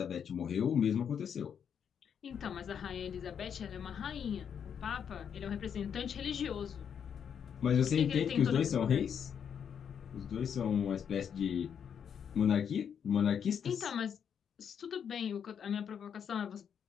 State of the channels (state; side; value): quieter; right; 7.8 dB